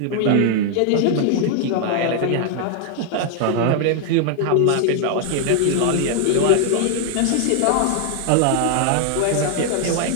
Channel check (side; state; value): both; different; correlation 0.00